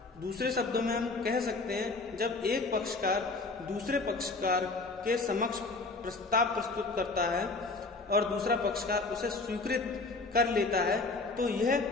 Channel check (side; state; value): right; quieter; 3.6 dB